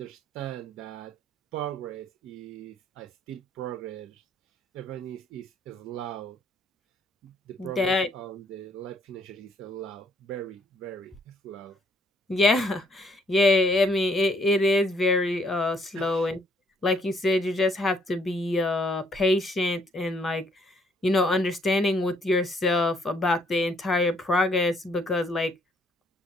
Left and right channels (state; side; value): normal; both; correlation 0.67